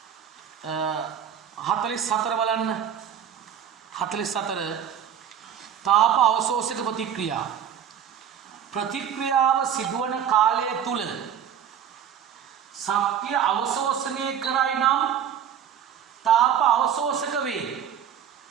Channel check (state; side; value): quieter; left; 8.9 dB